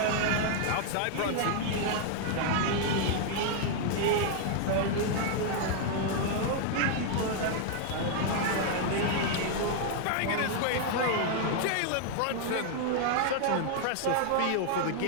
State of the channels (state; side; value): different; both; correlation 0.00